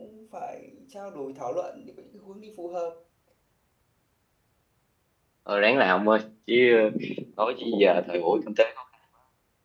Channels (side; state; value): both; identical; correlation 1.00